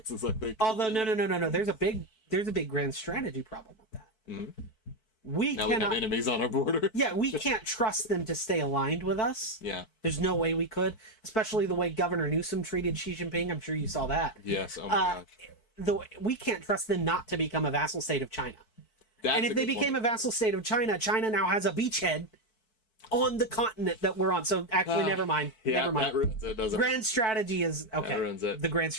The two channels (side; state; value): right; late; 4.6 ms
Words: I think. Although no. There's a big grand strategy problem with that. We have enemies on our border. Yeah, we can't trust them to stay aligned with us. Yeah. There's no way we could, especially the way Governor Newsom treated Xi Jinping. I'm sure you saw that. Yes. Oh my gosh. We can't trust them not to become a vassal state of China. And if they became a vassal state of China, China now has a beachhead on the continent that we're on. So actually, never mind. Yeah, never mind. That ruins it, doesn't Grand strategy is okay. That ruins it. The grand